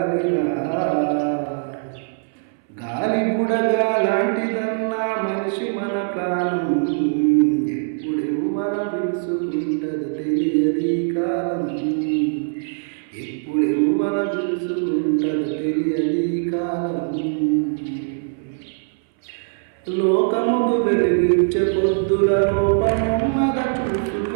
గాలి బుడగా లాంటిదన్నా మనిషి మన ప్రాణం, ఎప్పుడెవ్వల పిలుచుకుంటదో తెలియది కాలం. ఎప్పుడెవ్వల పిలుచుకుంటదో తెలియది కాలం. లోకముకు వెలిగించే పొద్దుల లోపమున్నద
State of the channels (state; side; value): silent; left; 64 dB below the other